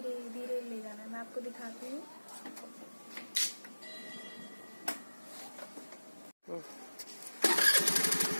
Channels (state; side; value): inverted; both; correlation -1.00